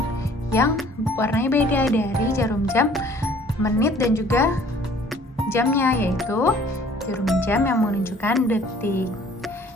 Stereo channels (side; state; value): both; normal; correlation 0.54